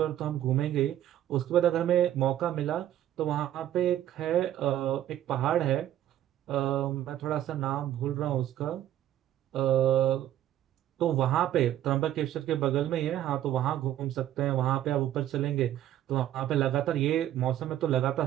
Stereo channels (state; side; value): quieter; left; 12.3 dB